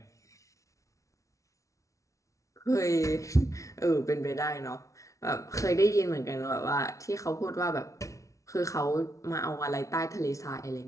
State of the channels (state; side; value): late; right; 0.15 ms